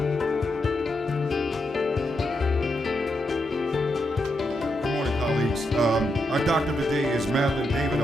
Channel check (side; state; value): both; normal; correlation 0.83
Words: Good morning, colleagues. Our doctor of the day is Madeline